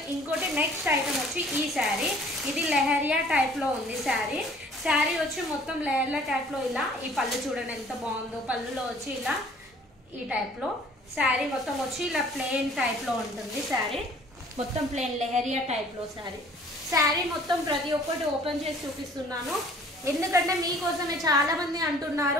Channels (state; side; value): normal; both; correlation 0.54